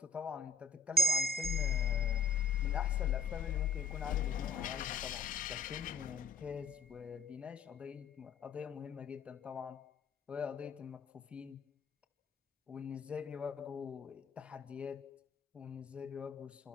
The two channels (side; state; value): right; quieter; 4.2 dB